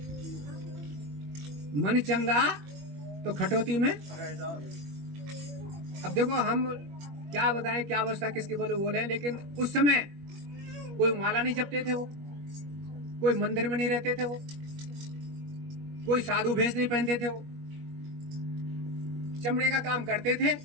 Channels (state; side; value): late; left; 21 ms